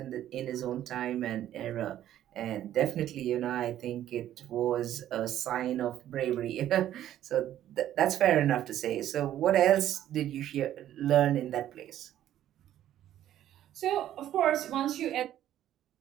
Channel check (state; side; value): quieter; left; 12.0 dB